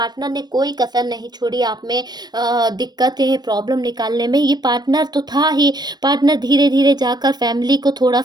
ने कोई कसर नहीं छोड़ी आप में दिक्कतें, प्रॉब्लम निकालने में। ये पार्टनर तो था ही, पार्टनर धीरे-धीरे जाकर फैमिली को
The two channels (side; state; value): left; late; 0.20 ms